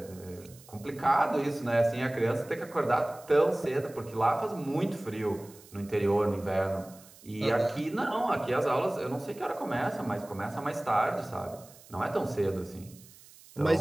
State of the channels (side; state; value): right; noise; hiss, 22 dB below the sound